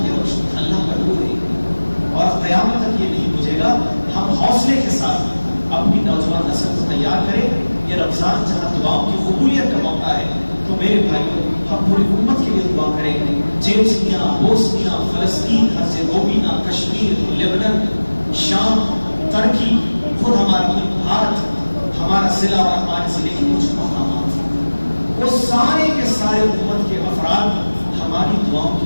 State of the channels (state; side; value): inverted; both; correlation -1.00